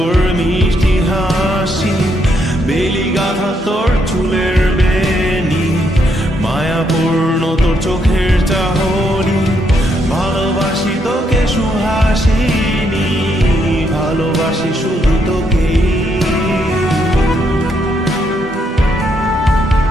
মিষ্টি হাসি, বেলি গাথা তোর চুলের বেনি, মায়াপূর্ণ তোর চোখের চাহনি। ভালোবাসি তোকে সুহাসিনী, ভালোবাসি শুধু তোকে।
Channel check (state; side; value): normal; both; correlation 0.76